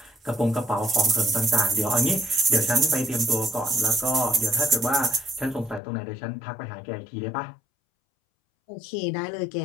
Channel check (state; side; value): drops out; right; at 5.8 s